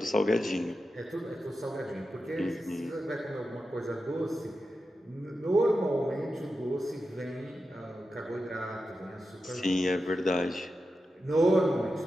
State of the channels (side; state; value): both; normal; correlation 0.90